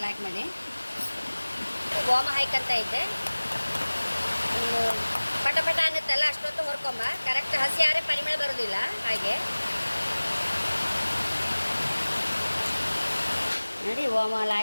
ಲೈಕ್ ಮಾಡಿ ಓಮ ಹಾಯ್ಕೊಂತ ಇದ್ದೆ. ಪಟ ಅನ್ನುತ್ತಲ್ಲ ಅಷ್ಟೊತ್ತು ಹೊರ್ಕೊಂಬ, ಕರೆಕ್ಟ್ ಹಸಿ ಆರೆ ಪರಿಮಳ ಬರೋದಿಲ್ಲ. ಹಾಗೆ ನೋಡಿ ಓಮ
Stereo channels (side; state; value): both; inverted; correlation -1.00